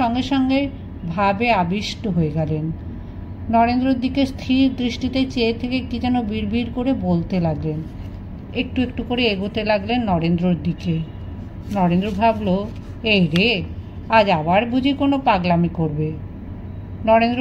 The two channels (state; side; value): identical; both; correlation 1.00